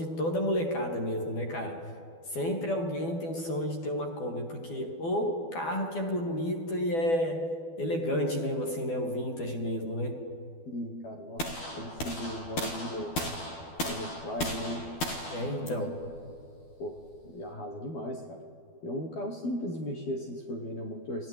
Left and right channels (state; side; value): late; right; 12 ms